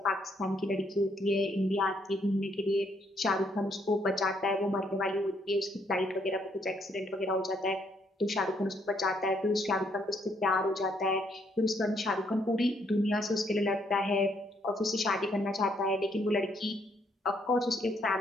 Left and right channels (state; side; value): normal; both; correlation 0.71